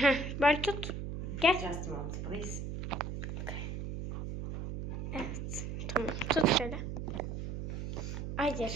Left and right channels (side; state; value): right; noise; hum, 5 dB below the sound